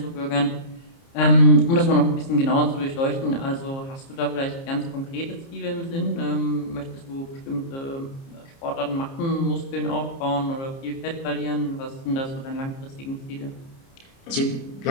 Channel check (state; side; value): late; right; 30 ms